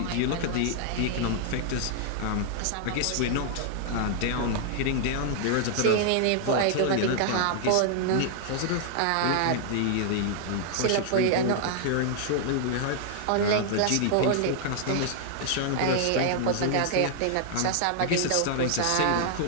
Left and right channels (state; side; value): different; both; correlation -0.01